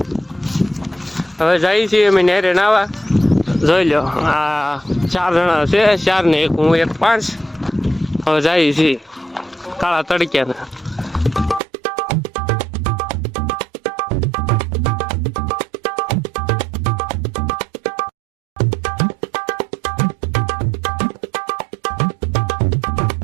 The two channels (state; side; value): drops out; left; at 11.6 s